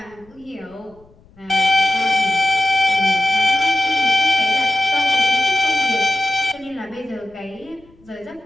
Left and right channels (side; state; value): left; noise; rumble, 29 dB below the sound